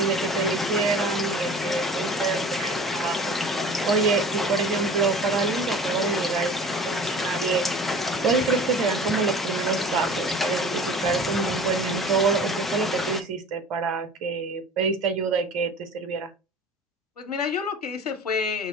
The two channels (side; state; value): both; normal; correlation 0.42